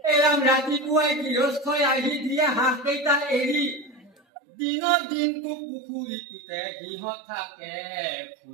এৰাম ৰাতিপুৱাই গৃহস্থই আহি দিয়ে হাঁহ কেইটা এৰি দিনৰ দিনটো পুখুৰীটোতে সিহঁত থাকে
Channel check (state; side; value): drops out; left; at 4.1 s